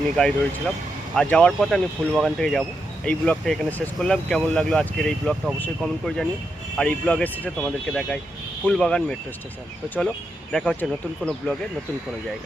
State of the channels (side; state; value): both; normal; correlation 0.84